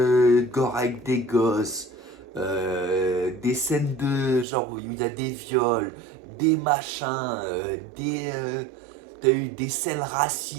gore avec des gosses, des scènes de genre où il y a des viols, des machins, t'as eu des scènes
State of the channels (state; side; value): drops out; left; at 4.5 s